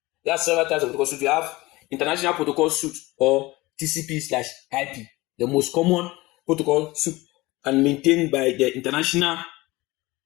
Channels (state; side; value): quieter; right; 20.7 dB